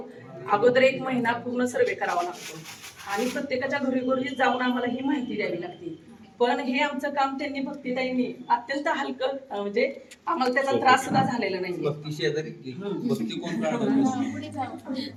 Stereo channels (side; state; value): both; identical; correlation 1.00